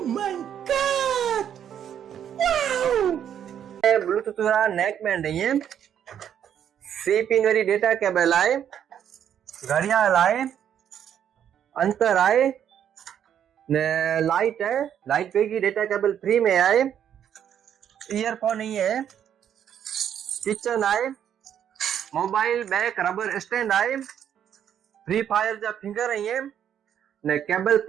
my god, wow! Bluetooth वाला नेक बैंड है, सी पिन वाली डेटा केबल आए, घड़ियाल आए, अंतर आए ने लाइट है, लाइट पे की डेटा केबल फ्री में आए, ईयरफोन नहीं है, किचन आए, मोबाइल बैक रबर स्टैंड आए, फ्री फायर जा फिंगर है ने केबल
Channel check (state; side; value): quieter; left; 9.3 dB